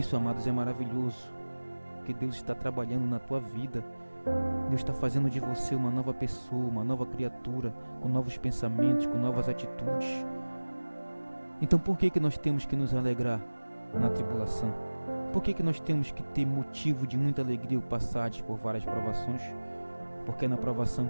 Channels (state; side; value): inverted; both; correlation -1.00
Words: amados, é maravilhoso, porque Deus está trabalhando na tua vida. Deus está fazendo de você uma nova pessoa, uma nova criatura, com novos pensamentos, com novas atitudes. Então por que nós temos que nos alegrar na tribulação? Por que nós temos que ter motivo de muita alegria ao passar por várias provações? Porque é na provação